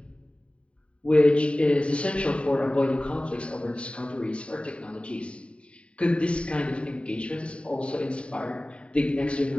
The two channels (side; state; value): right; late; 0.060 ms